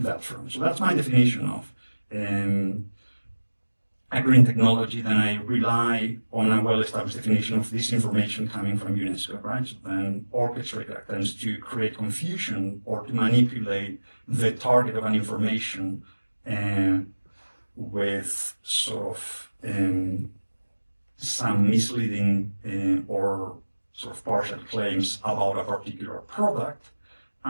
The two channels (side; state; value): both; inverted; correlation -1.00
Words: front. So that's my definition of a green technology. Then I rely on a well-established definition of disinformation coming from UNESCO, right? So then orchestrate attempts to create confusion or to manipulate the target of an information with sort of some misleading or sort of partial claims about a particular product.